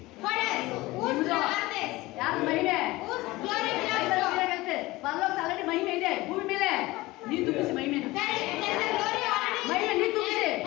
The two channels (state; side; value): quieter; right; 19.9 dB